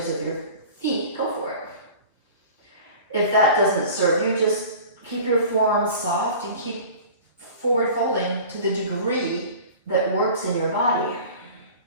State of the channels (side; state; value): both; inverted; correlation -0.41